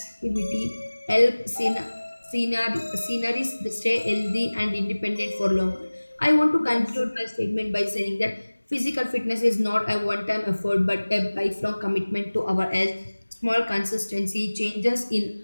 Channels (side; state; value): both; inverted; correlation -1.00